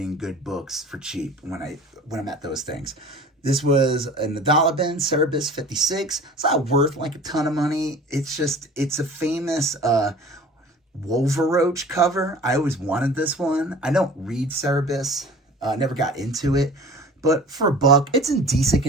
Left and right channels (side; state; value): both; normal; correlation 0.43